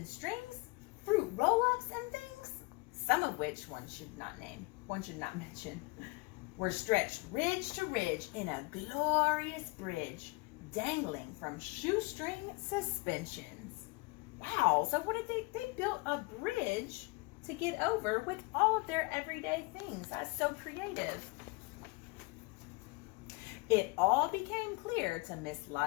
strings, fruit roll-ups and things, some of which one should not mention, were stretched ridge to ridge in a glorious bridge, dangling from shoestring suspensions. Wow, so what did they built a bridge to get over with all of their everyday things. That's so creative. It all became clear to Miss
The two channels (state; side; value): quieter; right; 27.0 dB